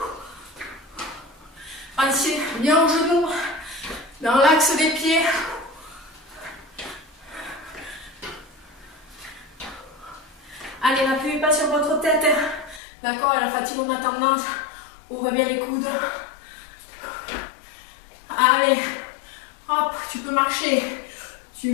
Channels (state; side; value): drops out; right; at 12.8 s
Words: Pensez bien aux genoux, dans l'axe des pieds. Allez, n'appuyez pas sur votre tête. D'accord, à la fatigue, on a tendance. Ouvre bien les coudes. Allez, hop, tu peux marcher. Tu